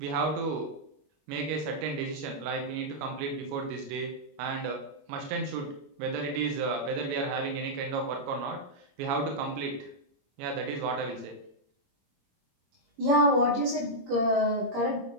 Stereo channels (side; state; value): left; late; 21 ms